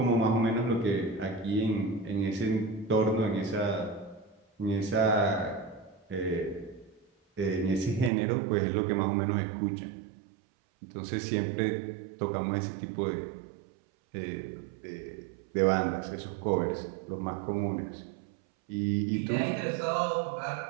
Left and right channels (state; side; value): drops out; left; at 8.1 s